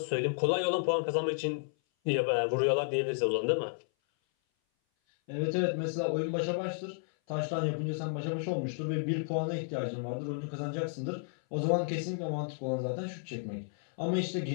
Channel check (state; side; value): silent; right; 56 dB below the other